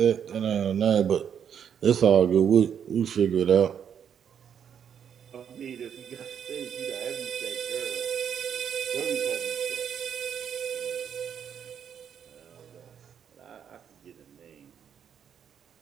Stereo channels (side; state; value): left; quieter; 8.2 dB